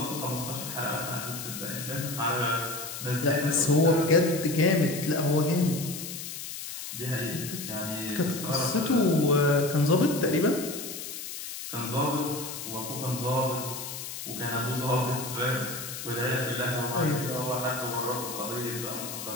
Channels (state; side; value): noise; left; hiss, 8 dB below the sound